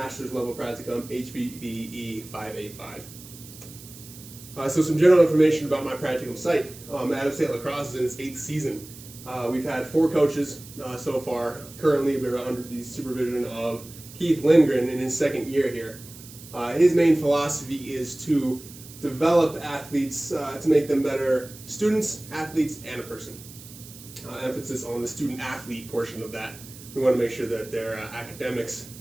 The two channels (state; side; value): noise; right; hiss, 17 dB below the sound